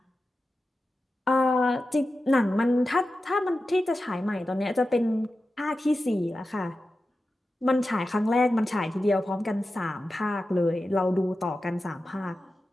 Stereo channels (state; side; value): normal; both; correlation 0.93